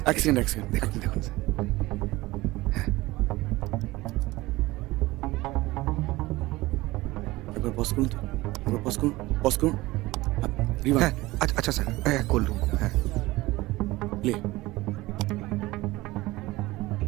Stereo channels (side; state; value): left; quieter; 19.6 dB